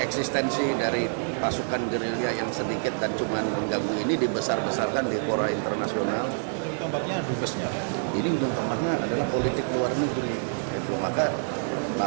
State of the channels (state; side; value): silent; left; digital silence